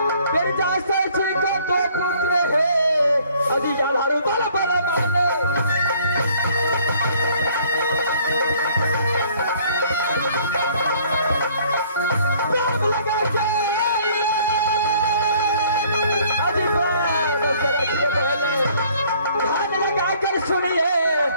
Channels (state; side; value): inverted; both; correlation -0.58